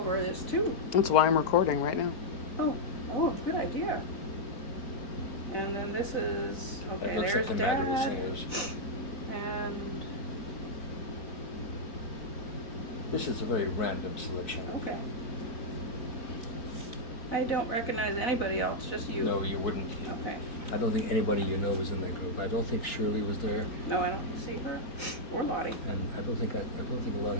this too. That's why I'm recording right now. Oh, good idea. And then this is, okay, It looks like there's the Madrigal Dad, Singers. and, This is a very random selection. okay. I don't recognize anybody else, just you. No, you wouldn't. Okay. I don't think anybody you know was in that group. I don't think Shirley was there, No, I don't see her, or Lottie. and I don't think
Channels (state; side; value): late; right; 4.0 ms